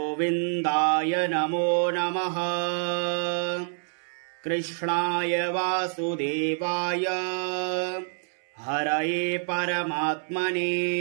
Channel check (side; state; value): left; silent; 60 dB below the other